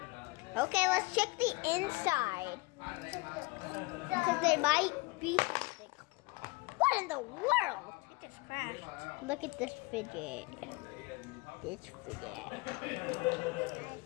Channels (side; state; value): right; quieter; 24.8 dB